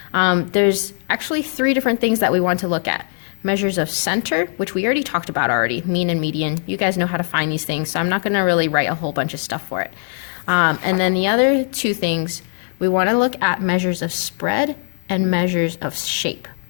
There's actually 3 different things that we want to look at. Measures of center, which we already talked about already, mean and median. You guys know how to find these things, so I'm not going to really write a whole bunch of stuff for it. And then the other 2 things, we want to look at measures of spread and measures of shape.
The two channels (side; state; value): right; silent; digital silence